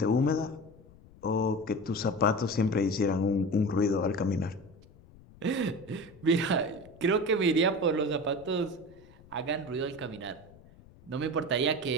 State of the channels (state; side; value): noise; left; rumble, 23 dB below the sound